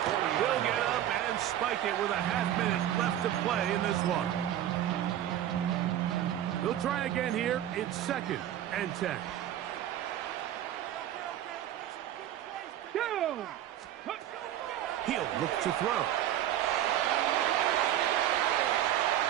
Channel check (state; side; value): quieter; left; 11.9 dB